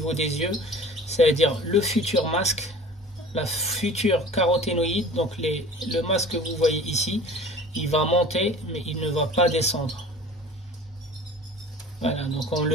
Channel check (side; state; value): both; normal; correlation 0.43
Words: des yeux, c'est-à-dire le futur masque, la future caroténoïde, donc le masque que vous voyez ici, il va monter, mais il ne va pas descendre. Voilà, donc on